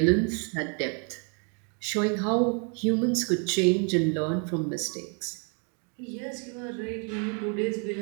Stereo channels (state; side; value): quieter; left; 38.4 dB